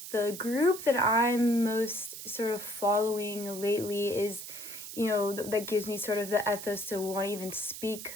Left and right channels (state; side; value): noise; right; hiss, 10 dB below the sound